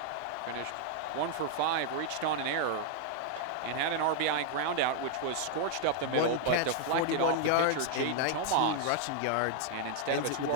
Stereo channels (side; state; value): both; different; correlation 0.00